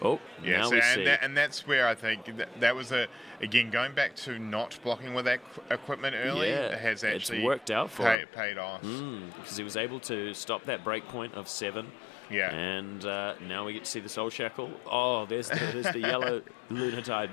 now we see. And that's where I think that was again going back to not blocking with that equipment early. Has actually it's worked out for paid off because he was able to stop that break point of 7. Yeah, and now we get to see the Soul Shackle. Oh, there's the yellow Lunatide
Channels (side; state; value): right; drops out; at 8.2 s